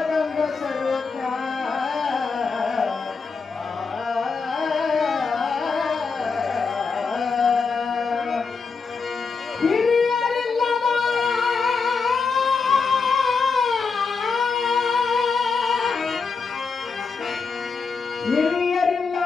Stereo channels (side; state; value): right; quieter; 5.0 dB